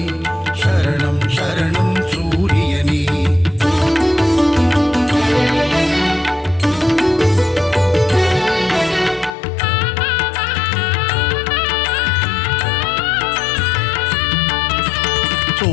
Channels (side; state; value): right; drops out; at 9.3 s